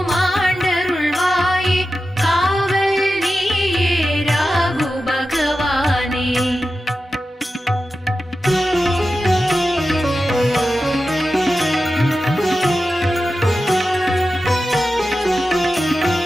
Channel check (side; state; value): both; normal; correlation 0.92